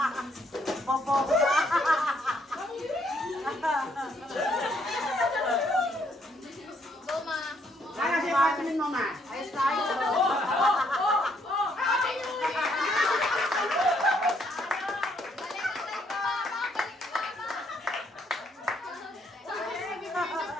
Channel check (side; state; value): both; normal; correlation 0.70